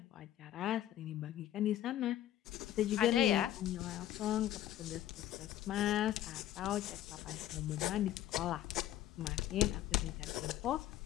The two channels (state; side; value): quieter; right; 12.7 dB